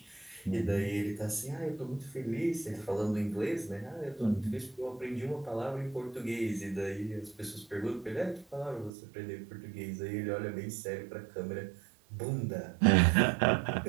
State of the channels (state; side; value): drops out; left; at 8.9 s